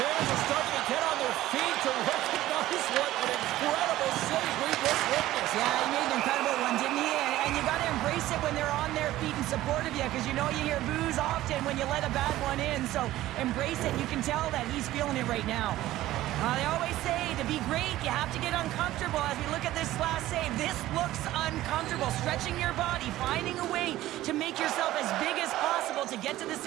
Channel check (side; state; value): left; quieter; 15.3 dB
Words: are starting to get on their feet to recognize what an incredible save we just witnessed. Yeah, he made an incredible one, didn't he? And you got to embrace it when they're on their feet in support of you, because you know you hear boos often when you let a bad one in. So embrace it. You can tell that he's feeling it right now. They always say to be great, you have to get uncomfortable. As we look at this last save, this looks uncomfortable. Stretching your body, finding a way to make yourself as big as possible to get to the